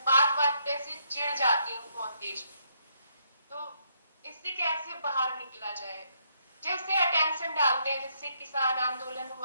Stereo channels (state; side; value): inverted; both; correlation -0.74